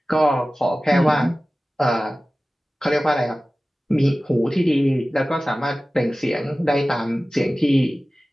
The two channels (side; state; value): both; normal; correlation 0.96